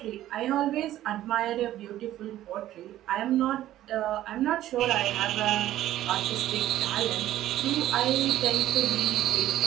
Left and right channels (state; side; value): quieter; left; 13.6 dB